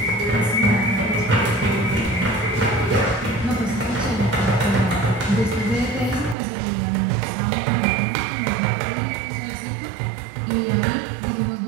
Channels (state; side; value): drops out; left; at 6.4 s